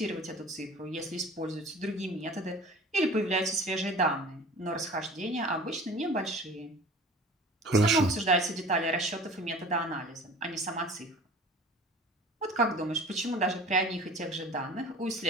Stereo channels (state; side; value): normal; both; correlation 0.43